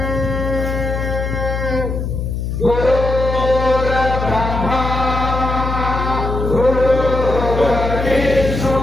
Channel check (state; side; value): noise; left; hum, 3 dB below the sound